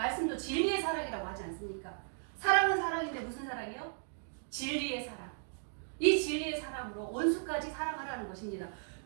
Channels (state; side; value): silent; left; digital silence